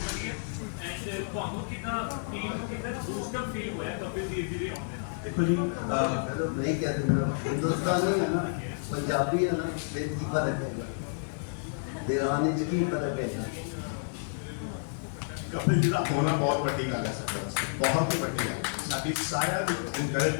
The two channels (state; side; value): silent; right; 55 dB below the other